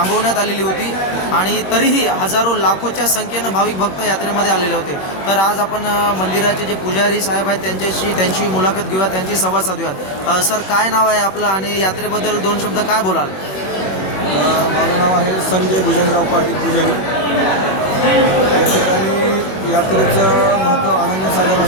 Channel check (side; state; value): right; late; 21 ms